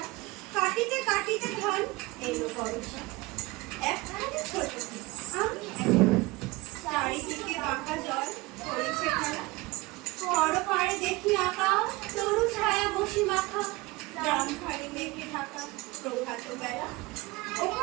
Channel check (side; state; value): left; quieter; 22.4 dB